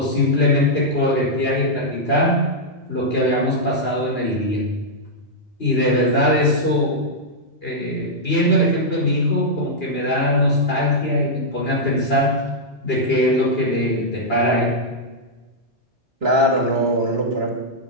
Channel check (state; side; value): normal; both; correlation -0.07